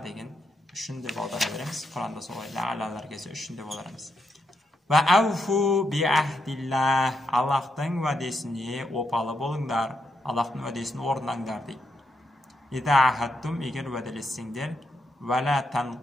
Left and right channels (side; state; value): both; normal; correlation 0.82